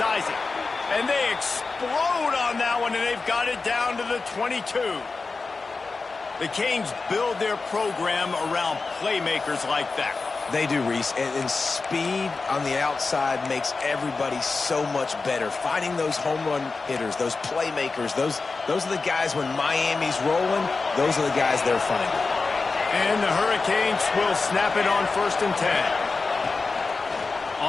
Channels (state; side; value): quieter; right; 4.1 dB